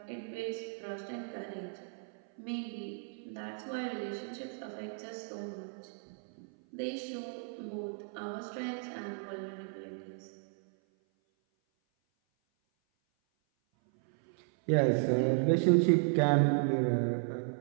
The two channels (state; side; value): silent; left; 55 dB below the other